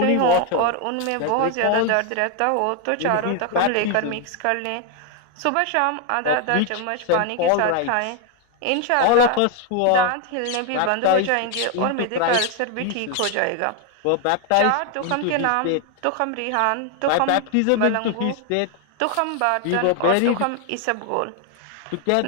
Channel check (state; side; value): different; both; correlation 0.00